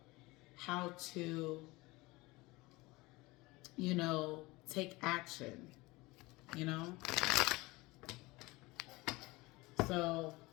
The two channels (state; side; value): quieter; right; 22.1 dB